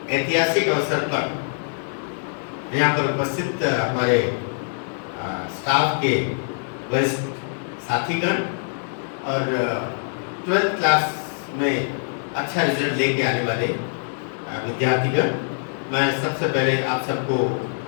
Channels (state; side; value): silent; right; digital silence